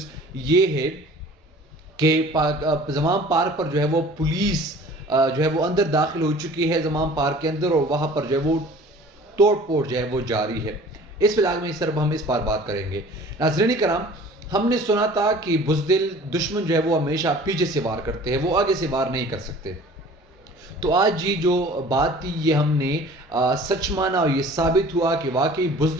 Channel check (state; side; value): normal; both; correlation 0.47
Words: ये है कि ज़माम पार्क पर जो है वो पुलिस जो है वो अंदर दाखिल हो चुकी है ज़माम पार्क के अंदर, और वहाँ पर जो है वो तोड़ फोड़ जो है वो जारी है। इस व्लॉग में सिर्फ हम इस पर बात करेंगे। नाज़रीन कराम, हमने सुना था कि बुज़दिल दुश्मन जो है वो हमेशा पीछे से वार करते हैं, वो आगे से वार नहीं कर सकते। तो आज ये जो बात थी ये हमने सच माना और ये साबित हुआ कि वाकई